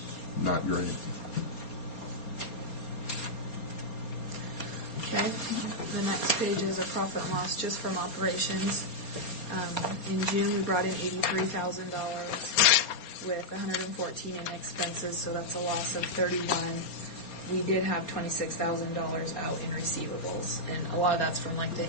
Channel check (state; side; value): late; right; 4.3 ms